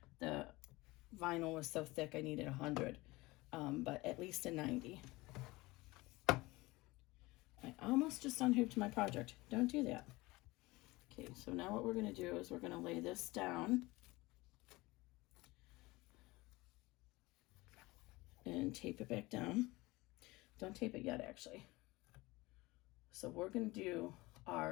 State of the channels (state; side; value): quieter; right; 21.3 dB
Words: the vinyl was so thick I needed 100, but at least a 90. I almost just unhooped my project. Don't do that. Okay, so now what we're going to do is we're going to lay this down and tape it back down. Don't tape it yet, actually. So we're going to do